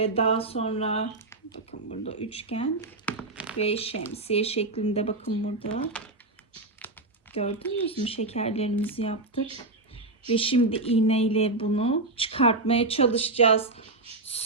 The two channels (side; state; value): left; quieter; 3.0 dB